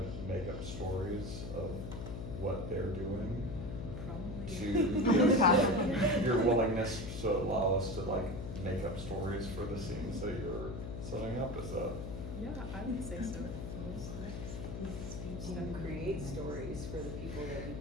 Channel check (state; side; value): noise; left; hum, 6 dB below the sound